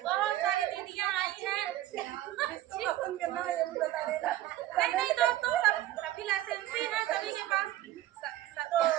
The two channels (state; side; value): quieter; left; 14.3 dB